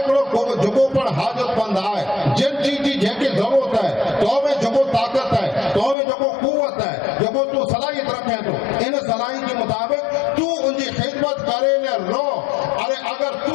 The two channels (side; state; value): right; drops out; at 6.0 s